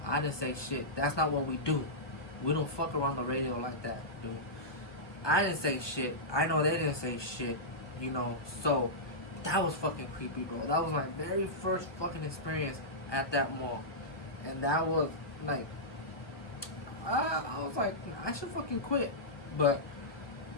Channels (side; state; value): right; late; 1.2 ms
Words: I didn't say shit. That's not what we do. We don't fuck around the radio like that, dude. I didn't say shit. I know they didn't say shit, you know. So that was fucking creepy, bro. That was my very first fucking experience at that mall. And that was like, I was like, I should fucking quit. But